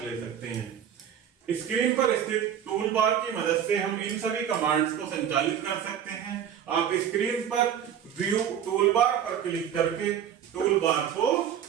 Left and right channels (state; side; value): quieter; left; 9.2 dB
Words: ले सकते हैं। स्क्रीन पर स्थित टूल बार की मदद से हम इन सभी कमांड्स को संचालित कर सकते हैं आप स्क्रीन पर व्यू टूलबार पर क्लिक करके टूलबार को